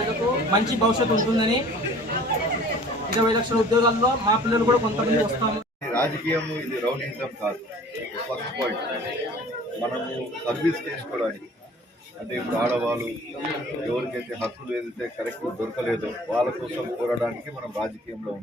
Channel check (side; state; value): both; normal; correlation 0.48